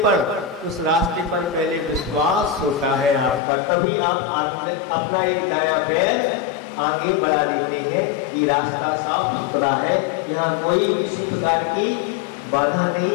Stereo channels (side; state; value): right; drops out; at 3.4 s